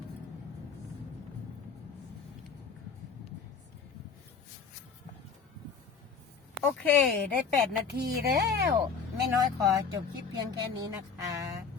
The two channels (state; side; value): quieter; right; 5.8 dB